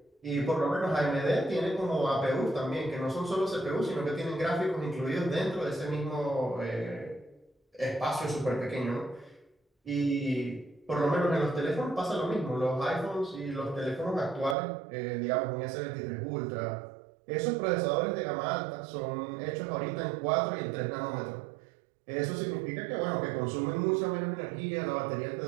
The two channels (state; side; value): drops out; left; at 14.6 s